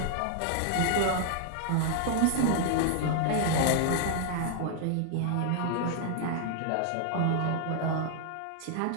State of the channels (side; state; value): both; different; correlation -0.01